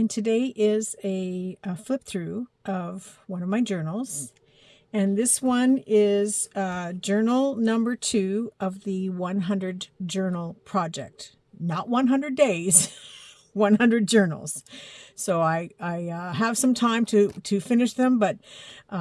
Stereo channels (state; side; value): identical; both; correlation 1.00